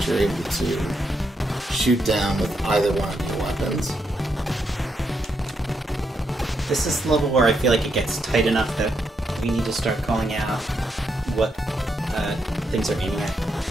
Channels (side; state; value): both; normal; correlation 0.80